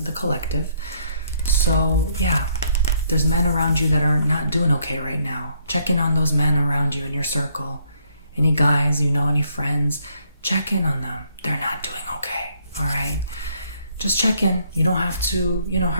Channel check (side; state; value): both; inverted; correlation -0.69